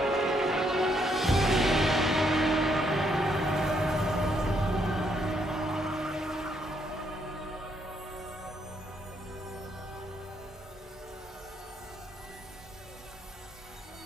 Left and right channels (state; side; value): normal; both; correlation 0.73